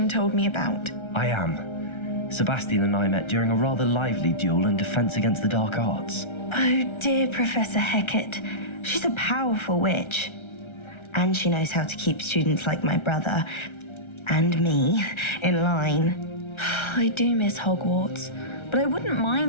told me about. I am. Sebastian and I met during a rather lively duel in defense against the dark arts. Oh dear, Professor Hecat. She's a powerful witch. And she knows how to keep students like my brother, and me, in line. I do miss Hogwarts, but I wouldn't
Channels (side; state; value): right; late; 1.3 ms